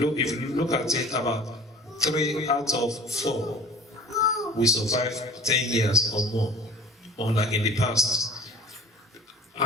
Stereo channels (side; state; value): both; normal; correlation 0.44